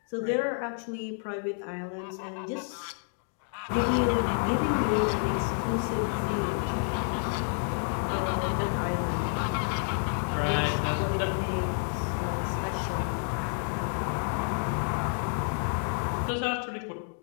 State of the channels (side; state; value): right; silent; 58 dB below the other